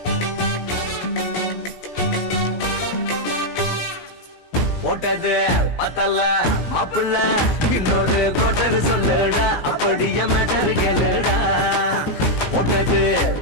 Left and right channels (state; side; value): late; right; 17 ms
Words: பத்தல மாப்பிள்ள இன்னொரு கோட்டர் சொல்லுடா அப்படிய மேட்டர் கேளுடா ஒன்னது